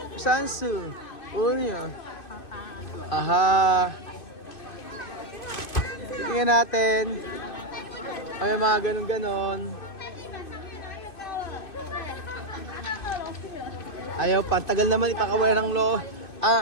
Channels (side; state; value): right; late; 2.6 ms